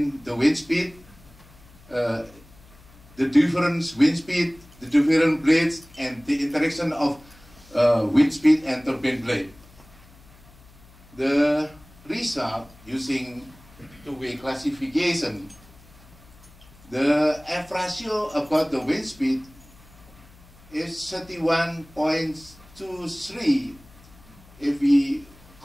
the wind speed, the different wind speed, the different blades, and the interaction of wind speed and turbine blade. The result using two-way classification, the F ratio about the wind speed is 31.23. If we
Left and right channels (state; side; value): noise; left; hum, 24 dB below the sound